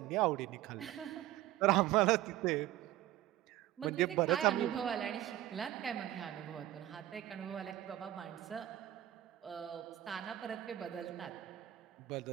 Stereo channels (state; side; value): quieter; left; 14.0 dB